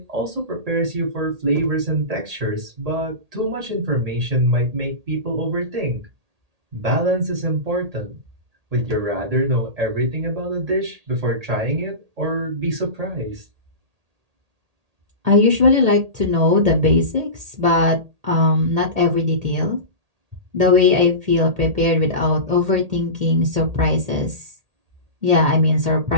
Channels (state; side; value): late; left; 1.8 ms